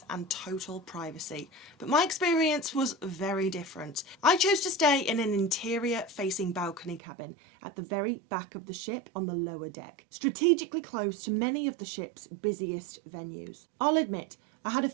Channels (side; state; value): left; drops out; at 7.0 s